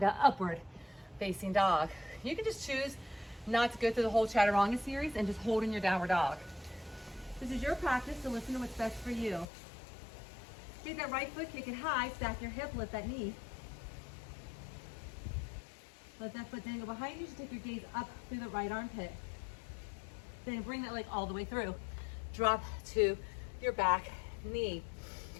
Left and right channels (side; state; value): right; drops out; at 9.5 s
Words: upward facing dog. You can just choose not to go through the whole chaturanga series and just hold in your downward dog. This is your practice, so listen to what's best for you. Take that right foot, kick it high, stack your hip, lift that knee. Let that foot dangle behind you. Just take your gaze up through the right armpit. Then bring that leg all the way through. Drop to your back knee.